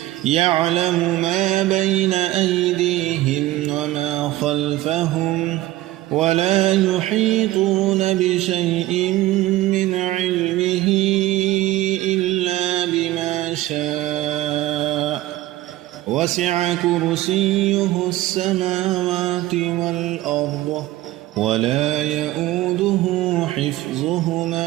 يعلم ما بين أيديهم وما خلفهم ولا يحيطون بشيء من علمه إلا بما شاء وسع كرسيه السماوات والأرض ولا يؤوده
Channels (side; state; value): left; quieter; 16.4 dB